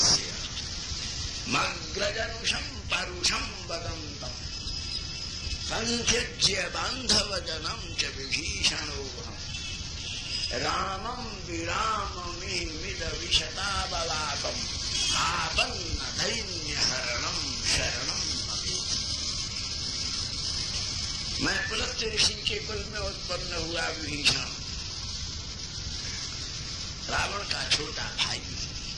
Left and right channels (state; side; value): identical; both; correlation 1.00